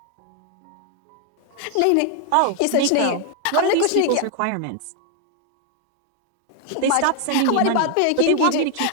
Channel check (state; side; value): different; both; correlation 0.00